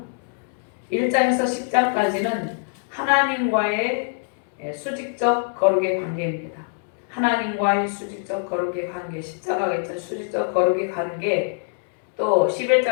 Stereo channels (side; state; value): right; silent; 63 dB below the other